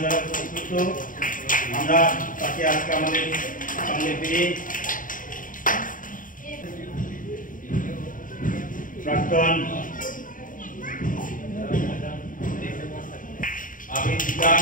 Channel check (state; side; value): late; right; 0.39 ms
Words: যারা প্রস্তুত, আমরা তাকে আজকে আমাদের সঙ্গে পেয়ে প্রাক্তন আবেদিকা